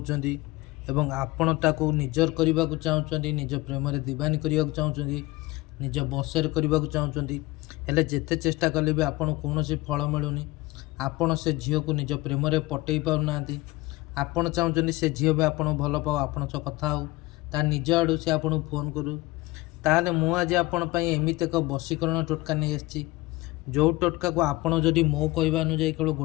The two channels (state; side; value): quieter; right; 20.5 dB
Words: एवं आपण ताको निजर करने को चाहते निज प्रेम रे दीवानी करने को चाहते निज बसरे करने को चाहते हेले जेते चेष्टा कले भी आपण कौन फल मिलूनी आपण से झील को निज प्रेम रे पटई पाना आपण चाहते से झील भी आपण भल पाओ आपण सह कथा हो ता निज आड़ू से आपन फोन करू ताहले मु आज आपण एमित एक बशीकरण टोटका नहीं आसी जो टोटका को आपण जदि मो कहवा अनुजाई केवल